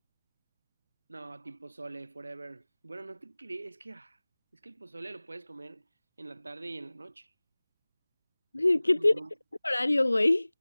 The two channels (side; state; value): both; inverted; correlation -1.00